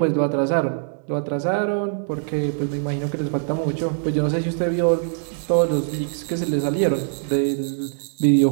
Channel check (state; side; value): silent; left; digital silence